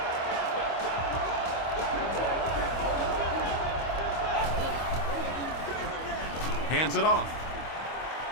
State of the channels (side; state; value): right; late; 25 ms